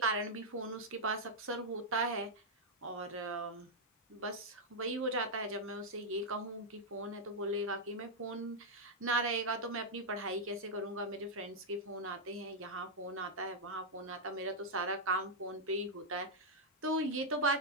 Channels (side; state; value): both; normal; correlation -0.05